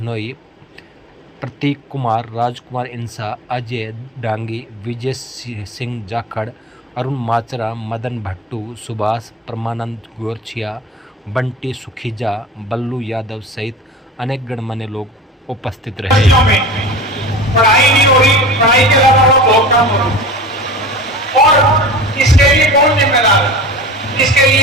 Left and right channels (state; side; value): normal; both; correlation 0.35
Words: प्रतीक कुमार, राजकुमार इंसा, अजय डांगी, विजय सिंह जाखड़, अरुण माचरा, मदन भट्टू, सुभाष, परमानंद गोरछिया, बंटी सुखीजा, बल्लू यादव सहित अनेक गणमान्य लोग उपस्थित रहे। पढ़ाई नहीं हो रही, पढ़ाई के अलावा बहुत काम हो रहा और इसके लिए कौन जिम्मेदार है? इसके